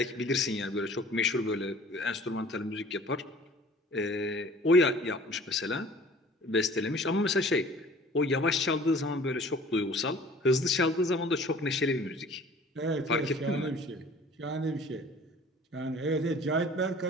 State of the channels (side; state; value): both; normal; correlation 0.48